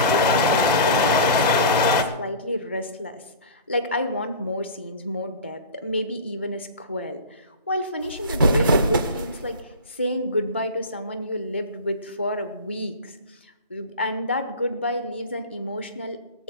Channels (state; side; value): inverted; both; correlation -0.33